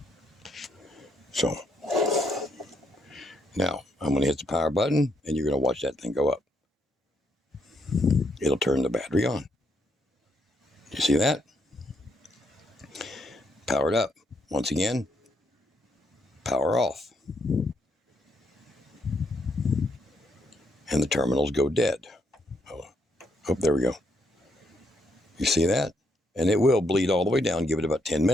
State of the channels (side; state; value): both; normal; correlation 0.75